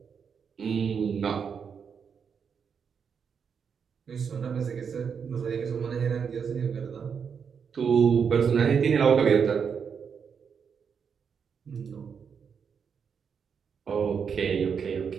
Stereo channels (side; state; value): left; quieter; 6.7 dB